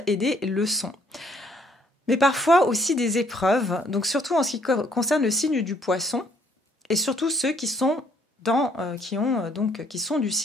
et des leçons. Mais parfois aussi des épreuves, donc surtout en ce qui concerne le signe du Poisson, et surtout ceux qui sont qui sont du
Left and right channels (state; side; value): normal; both; correlation 0.65